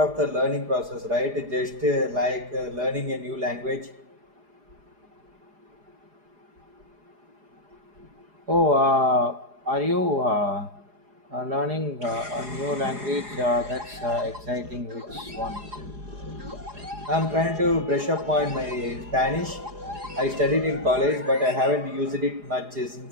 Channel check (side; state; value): left; late; 4.9 ms